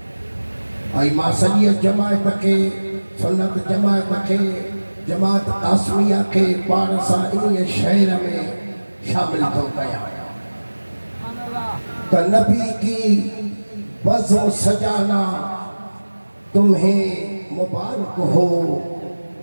आई मासलियत जमायत के सुन्नत जमायत के जमात आसमिया के पारसा इन शहर में शामिल तो कया तो नबी की बज़ो सजाना तुम्हें मुबारक हो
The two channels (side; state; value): both; inverted; correlation -1.00